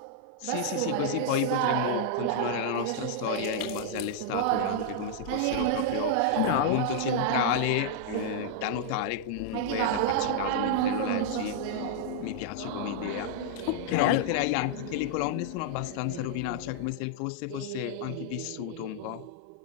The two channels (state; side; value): different; both; correlation -0.01